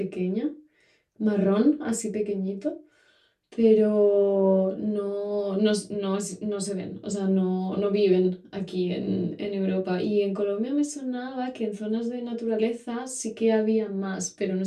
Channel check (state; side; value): identical; both; correlation 1.00